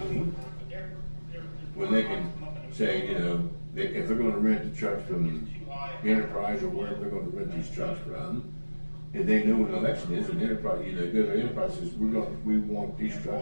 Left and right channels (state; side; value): inverted; both; correlation -1.00